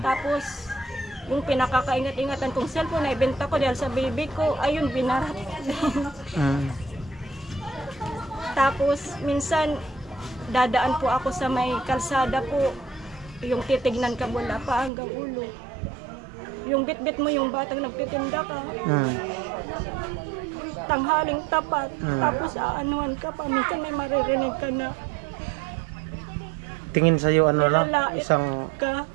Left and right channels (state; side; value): drops out; left; at 14.9 s